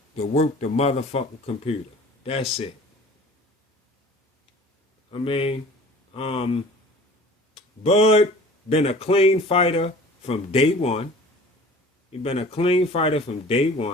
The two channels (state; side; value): normal; both; correlation 0.45